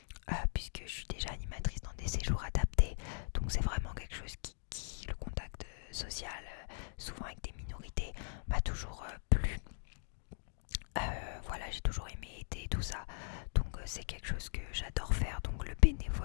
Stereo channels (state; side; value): silent; right; digital silence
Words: puisque je suis déjà animatrice dans des séjours adaptés, donc c'est vraiment quelque chose qui le contact social, souvent avec des minorités, m'a toujours plu. Voilà, j'ai toujours aimé aider tout ça, donc c'est quelque chose que j'adore faire. Donc le